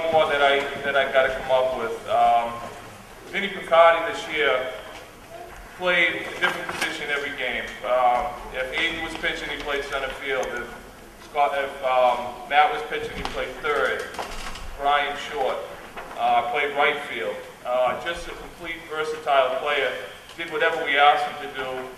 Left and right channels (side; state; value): both; identical; correlation 1.00